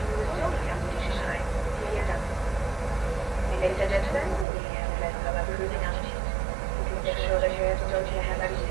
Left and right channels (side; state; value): left; drops out; at 4.5 s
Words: Ladies and gentlemen, we have a lesson of cruising altitude. Make sure that your don't you have that